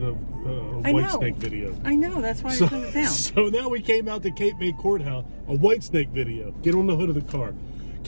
a Whitesnake video. I know, that's why I turned it down. So now we came out to Cape May Courthouse, a Whitesnake video. Get on the hood of the car.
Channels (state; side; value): inverted; both; correlation -1.00